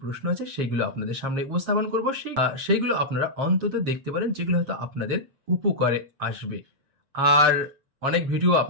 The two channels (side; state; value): left; late; 7.4 ms